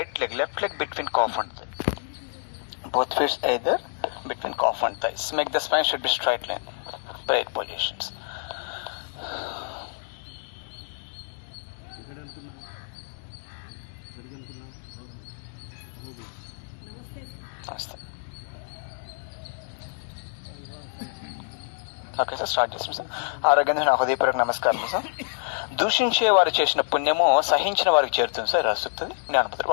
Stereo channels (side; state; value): right; silent; 60 dB below the other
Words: leg, left leg between calf and thigh. Both feet either between calf and thighs. Make the spine should be straight line. Prayer positions. Namaste. Okay sir, start చేస్తాం sir. ఆరోగ్యంగా నా హృదయపూర్వక నమస్కారం sir. దూషించే వారు చేసిన పుణ్యము సహించిన వారికి చేరుతుంది సార్, రాస్తుంది జ్ఞానపత్రం.